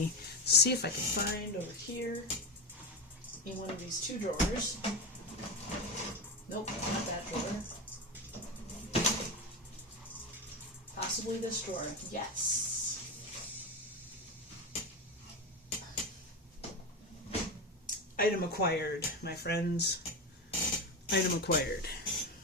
see if I can find over here in one of these 2 drawers. Nope, not that drawer. Possibly this drawer. Yes. Item acquired, my friends. Item acquired.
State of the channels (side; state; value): both; normal; correlation 0.18